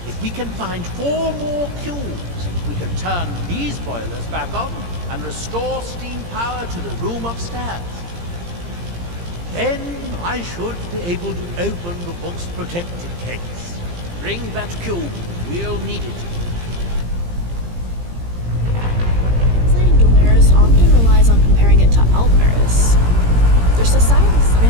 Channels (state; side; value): late; left; 17 ms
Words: if we can find 4 more cubes, we can turn these boilers back on and restore steam power to the room upstairs. Then I should be able to open the book's protected case. Bring that cube. We'll need it. Translating Dulmeris often relies on comparing it to Aldmeris. Their societies